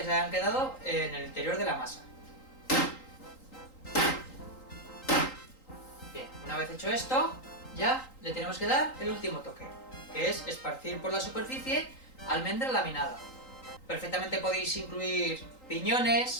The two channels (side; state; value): right; late; 3.8 ms